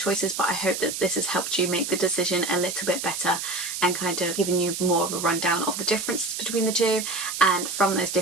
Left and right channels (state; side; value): noise; right; hiss, 5 dB below the sound